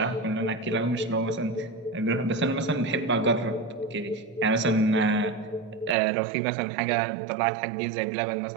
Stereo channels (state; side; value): drops out; left; at 6.0 s